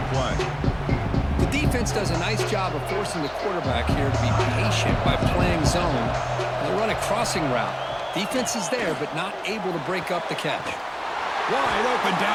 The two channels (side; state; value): both; identical; correlation 1.00